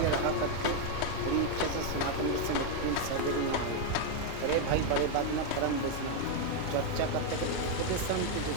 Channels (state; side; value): different; both; correlation 0.01